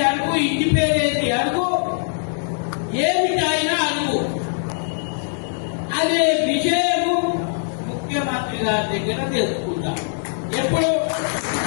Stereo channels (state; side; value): silent; right; digital silence